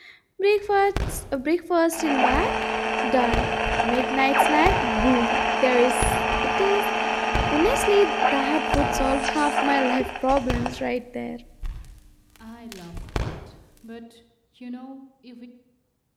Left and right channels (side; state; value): both; identical; correlation 1.00